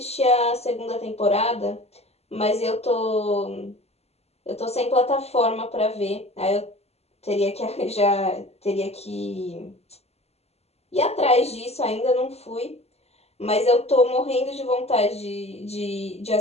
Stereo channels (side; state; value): right; late; 0.30 ms